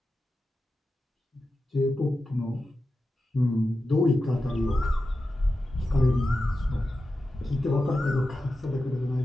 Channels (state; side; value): normal; both; correlation 0.91